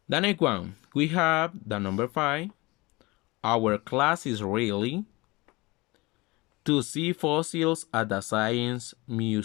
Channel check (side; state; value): right; quieter; 23.3 dB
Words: The next one, we have the number 5. Our class is really to see fossils at the Science